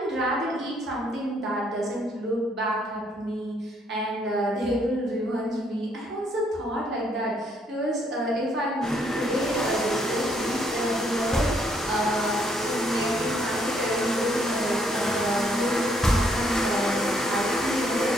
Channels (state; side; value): normal; both; correlation 0.69